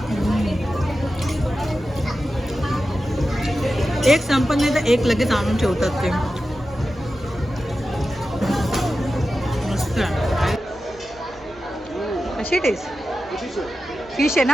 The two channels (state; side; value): normal; both; correlation 0.92